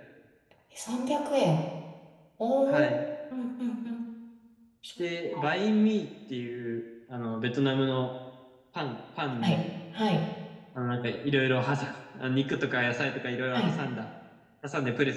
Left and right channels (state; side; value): identical; both; correlation 1.00